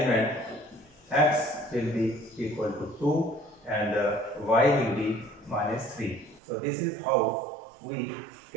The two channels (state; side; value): drops out; left; at 6.4 s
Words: x will be equal to 2 and y will be minus 3. So this is how we